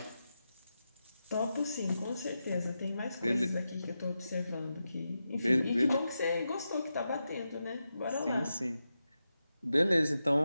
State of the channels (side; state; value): both; inverted; correlation -0.89